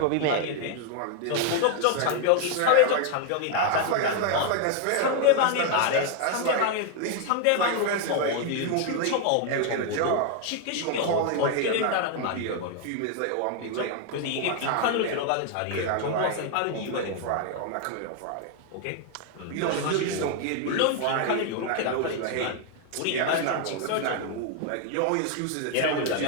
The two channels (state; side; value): different; both; correlation 0.00